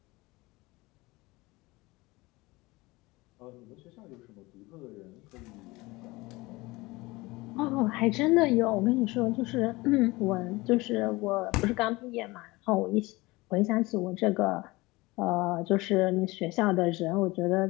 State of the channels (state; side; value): quieter; right; 21.9 dB